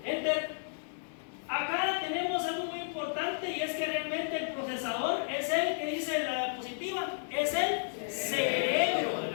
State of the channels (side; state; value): right; silent; 56 dB below the other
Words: Enter. Acá tenemos algo muy importante, y es que realmente el procesador es el que dice la diapositiva, es el cerebro de